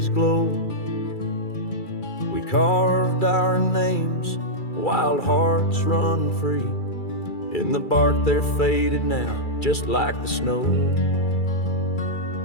glow, we carved our names, wild hearts run free. In the bark they're faded now, just like the snow.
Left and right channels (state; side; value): late; right; 2.3 ms